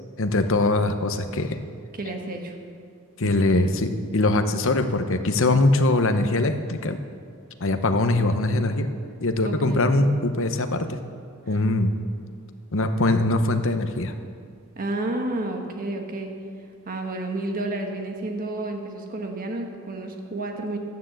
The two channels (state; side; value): normal; both; correlation 0.46